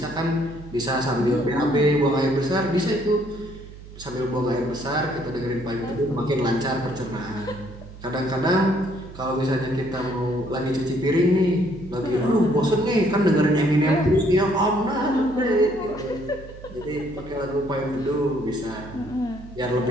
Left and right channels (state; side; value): noise; right; hum, 16 dB below the sound